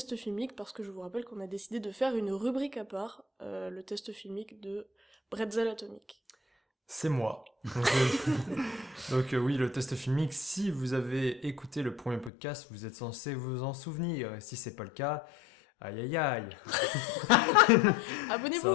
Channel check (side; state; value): right; drops out; at 12.3 s